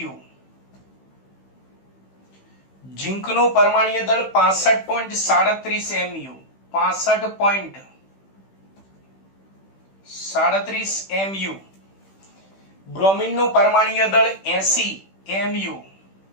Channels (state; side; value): late; right; 15 ms